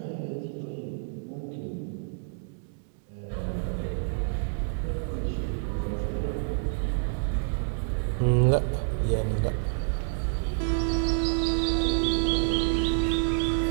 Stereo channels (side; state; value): left; silent; digital silence